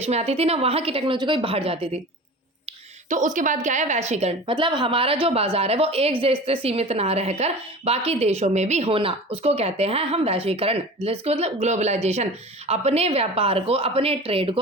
में आती थी, ना वहाँ की टेक्नोलॉजी कोई बाहर जाती थी। तो उसके बाद क्या है, वैश्वीकरण मतलब हमारा जो बाजार है वो एक देश से सीमित ना रहकर बाकी देशों में भी होना, उसको कहते हैं हम वैश्वीकरण, जिसको मतलब ग्लोबलाइजेशन। अपने व्यापार को, अपने ट्रेड को,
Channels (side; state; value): both; normal; correlation 0.36